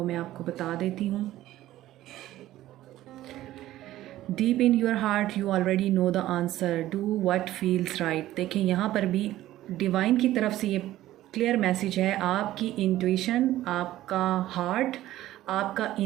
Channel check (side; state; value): left; quieter; 14.6 dB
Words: मैं आपको बता देती हूँ। Deep in your heart you already know the answer, do what feels right. देखें, यहाँ पर भी डिवाइन की तरफ से ये क्लियर मैसेज है। आपकी इंट्यूशन, आपका हार्ट, आपका